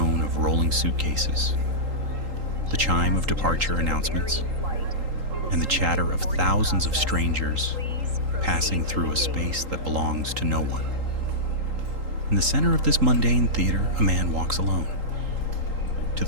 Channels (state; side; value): late; left; 3.8 ms